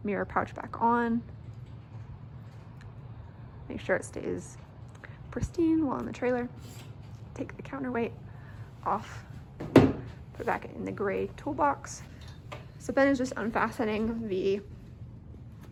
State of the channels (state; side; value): identical; both; correlation 1.00